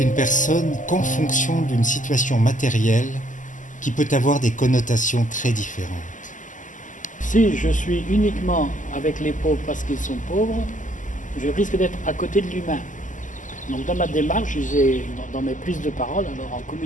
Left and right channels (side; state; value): right; late; 0.37 ms